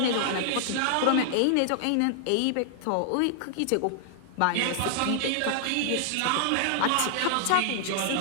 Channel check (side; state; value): both; different; correlation 0.00